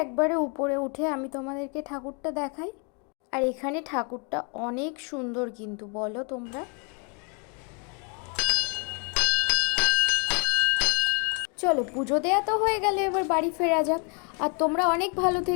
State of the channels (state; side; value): quieter; right; 36.7 dB